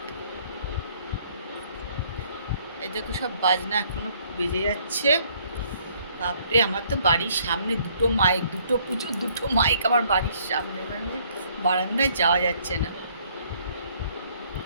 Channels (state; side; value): inverted; both; correlation -0.64